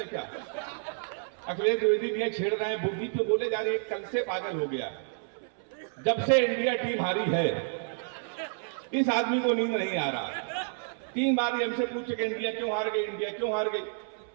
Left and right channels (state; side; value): silent; left; 58 dB below the other